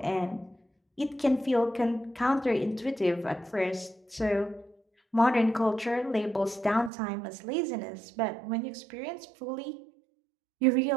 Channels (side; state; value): left; drops out; at 6.9 s